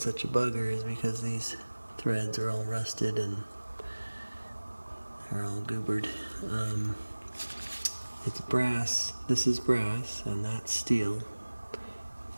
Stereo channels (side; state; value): both; inverted; correlation -1.00